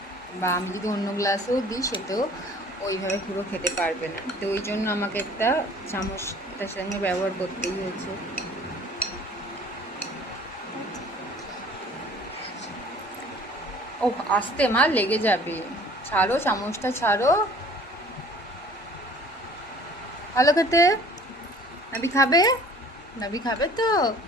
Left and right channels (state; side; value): normal; both; correlation 0.51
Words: বা আমি যদি অন্য গ্লাসেও দিই সেটাও ওইভাবে পুরো খেতে পারবে না। তো ওই জন্য আমাকে একটা চামচটার সঙ্গে ব্যবহার করতেই হয়েছে। ও আস্তে মা, লেগে যাবে। ছাড়ো চামচটা, ছাড়ো। ভালো খেতে? নাবি খাবে? নাবি খাবে তো?